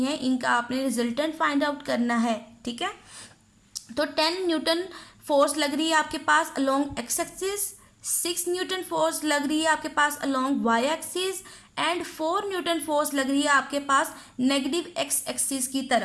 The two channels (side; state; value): both; identical; correlation 1.00